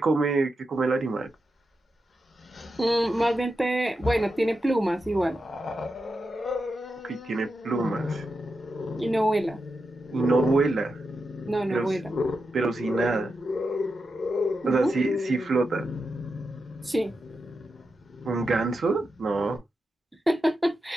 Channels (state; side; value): normal; both; correlation 0.88